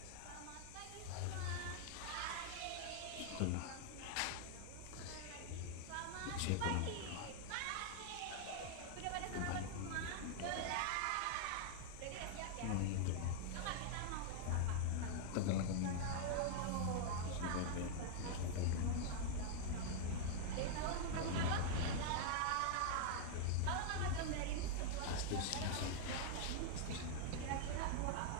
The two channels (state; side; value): different; both; correlation 0.00